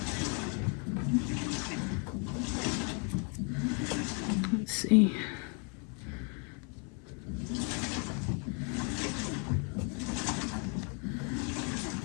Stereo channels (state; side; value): quieter; right; 37.7 dB